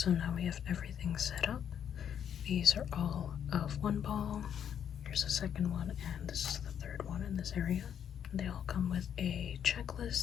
now we have everything set up. These are all of one ball. Here's the second one, and this is the third one in this area. They all come with a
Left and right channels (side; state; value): right; quieter; 8.8 dB